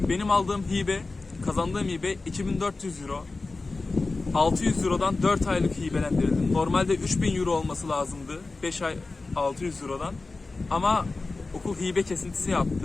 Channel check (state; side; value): quieter; right; 3.6 dB